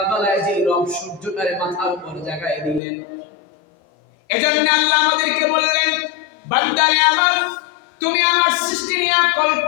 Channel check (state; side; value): drops out; right; at 2.8 s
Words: যে রব সূর্যটারে মাথার উপর জাগায় দিলেন। এজন্য আল্লাহ আমাদেরকে বললেন, বান্দারে আমার, তুমি আমার সৃষ্টি নিয়ে